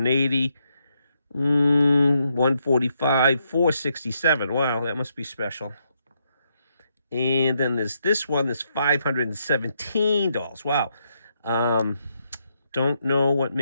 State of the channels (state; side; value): inverted; both; correlation -0.78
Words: 145, 467. Wow, that must be special. And then there's this one that's $517. Wow. Don't know what